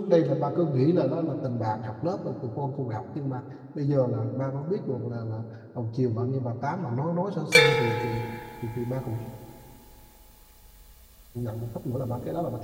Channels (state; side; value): identical; both; correlation 1.00